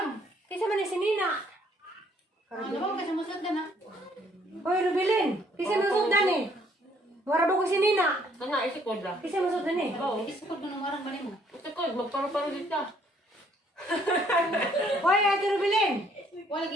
Kaysa man ni si Nina. Ano ba kasi musot ka na? Hoy, Rubilin. Kaysa masod na ni. Warado ko si Nina. Kana isikod ra. Kaysa masod na ni. Oo. Isukod mo ng marang bali mo. Isikod magparo-paro dito. Hoy, Ate Rubilin. Wala lagi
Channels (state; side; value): normal; both; correlation 0.64